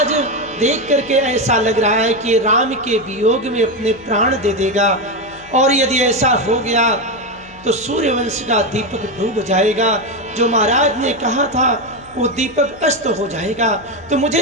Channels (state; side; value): noise; left; hum, 24 dB below the sound